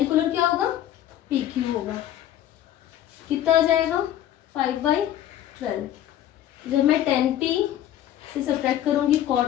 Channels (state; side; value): quieter; right; 11.9 dB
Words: क्या होगा, पी क्यू होगा। कितना आ जाएगा, 5/12। जब मैं 10p से सब्ट्रैक्ट करूंगी